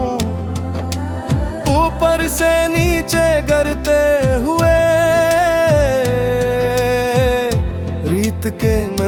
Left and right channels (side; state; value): both; identical; correlation 1.00